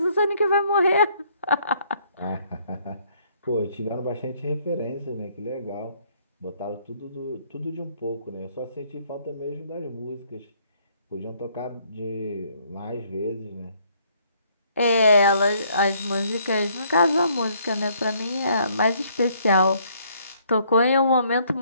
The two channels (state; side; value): inverted; both; correlation -0.66